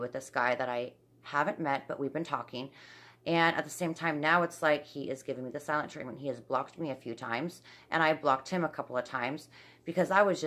this guy that I haven't met, but we've been talking. And at the same time, now it's like he is giving me the silent treatment. He has blocked me a few times, and I blocked him a couple of times, because I was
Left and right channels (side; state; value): both; identical; correlation 1.00